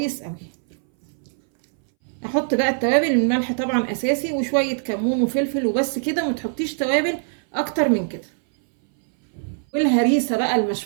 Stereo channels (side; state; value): left; silent; 62 dB below the other